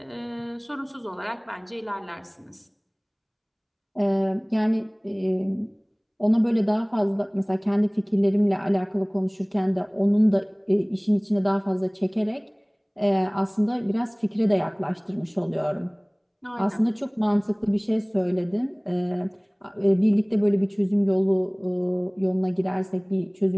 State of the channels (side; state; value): both; identical; correlation 1.00